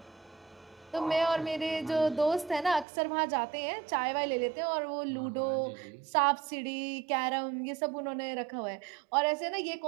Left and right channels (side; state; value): left; drops out; at 2.9 s